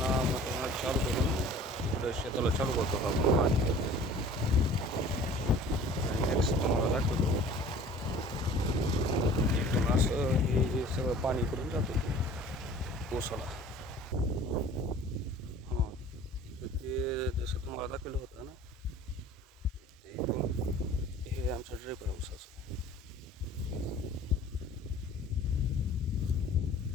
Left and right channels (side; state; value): both; normal; correlation 0.47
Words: मोठं चालू करून पुढे शेताला चालू करतो आपण पाणी. नेक्स्ट तुम्हाला दाखवतो. इथून असं हे सगळं पाणी इकडून जातं ऊसाला. हां, ते जसं तुम्हाला दाखवलं होतं ना, ते इथून हे आमचं ड्रिप आहे ऊसाचं.